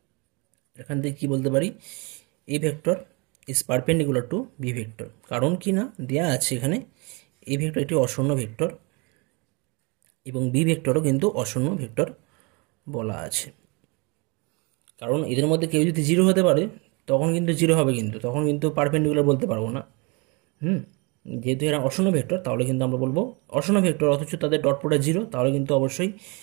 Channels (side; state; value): left; quieter; 29.7 dB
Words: এখান থেকে কী বলতে পারি, A vector is perpendicular to B vector, কারণ কি না দেওয়া আছে এখানে এ ভেক্টর একটি অশূন্য ভেক্টর এবং বি ভেক্টরও কিন্তু অশূন্য ভেক্টর বলা আছে, কারণ এদের মধ্যে কেউ যদি 0 হতে পারে তখন কিন্তু 0 হবে, কিন্তু তখন কিন্তু পারপেন্ডিকুলার বলতে পারবো না। যেহেতু এরা অশূন্য ভেক্টর তাহলে কিন্তু আমরা বলবো অশূন্য ভেক্টর, অথচ তাদের ডট প্রোডাক্ট 0, তাহলে কিন্তু অবশ্যই